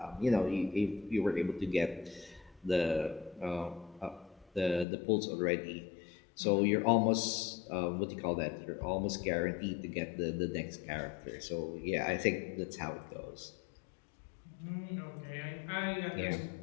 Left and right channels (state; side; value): drops out; right; at 4.9 s